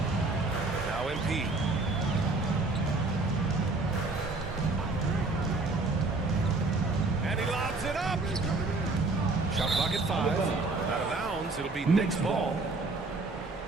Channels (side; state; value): left; quieter; 3.4 dB